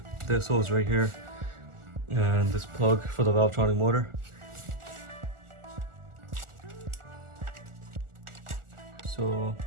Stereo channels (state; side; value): late; left; 1.4 ms